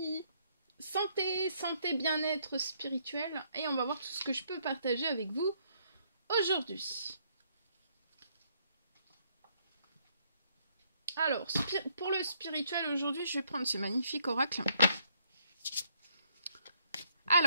Santé, bien-être spirituel. Et on va voir tout ce que je peux partager avec vous aujourd'hui. Alors, pour le spirituel aujourd'hui, je vais prendre ce magnifique oracle.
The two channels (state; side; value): inverted; both; correlation -0.70